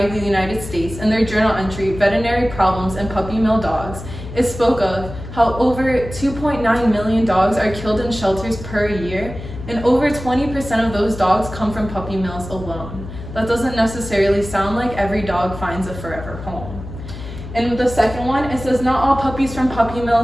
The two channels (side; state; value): left; noise; hum, 11 dB below the sound